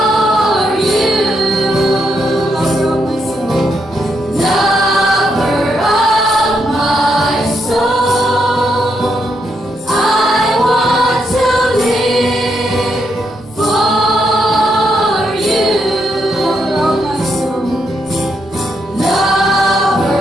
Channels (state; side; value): normal; both; correlation 0.79